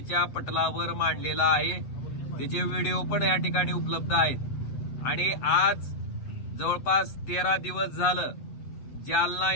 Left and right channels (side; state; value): right; late; 8.3 ms